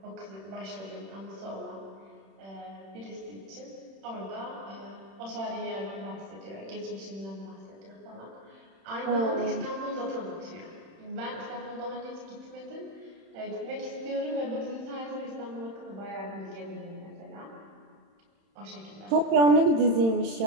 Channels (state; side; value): late; left; 31 ms